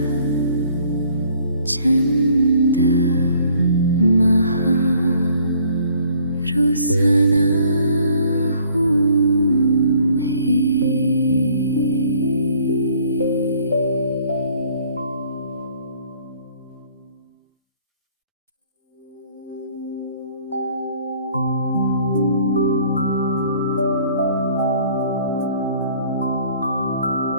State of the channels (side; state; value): both; inverted; correlation -0.58